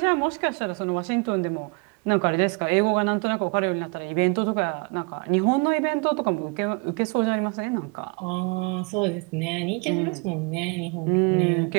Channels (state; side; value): quieter; left; 31.8 dB